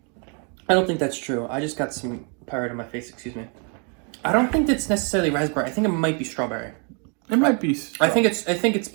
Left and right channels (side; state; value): left; quieter; 37.9 dB